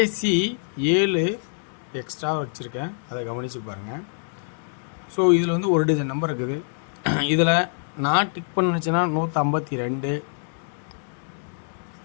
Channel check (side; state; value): right; silent; digital silence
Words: சி 7 எக்ஸ்ட்ரா வச்சுருக்கேன், அதை கவனித்து பாருங்கள். ஸோ இதில் வந்து ஒரு டஜன் நம்பர் இருக்குது. இதில் நான் டிக் பண்ணிச்சுன்னா 152,